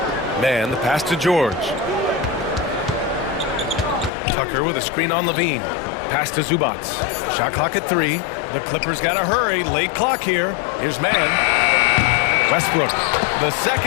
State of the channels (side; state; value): right; drops out; at 4.1 s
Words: Man, the pass to George. Tucker with a screen on Levine. Pass to Zubats. Shot clock at 3. The Clippers got to hurry. Late clock here. Here's man. Westbrook. The